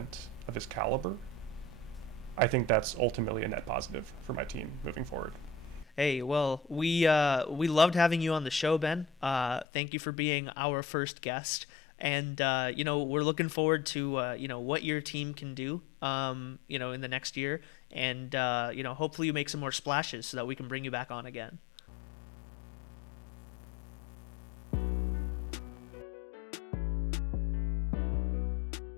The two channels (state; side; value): drops out; right; at 9.7 s